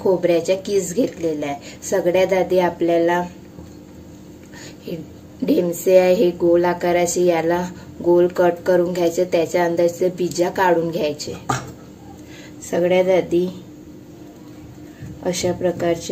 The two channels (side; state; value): both; identical; correlation 1.00